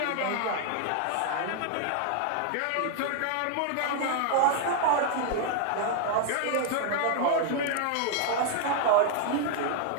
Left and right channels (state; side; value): different; both; correlation 0.00